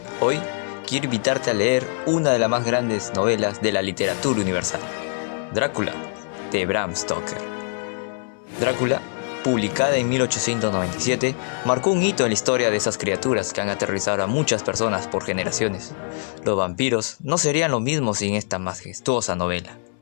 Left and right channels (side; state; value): right; silent; 63 dB below the other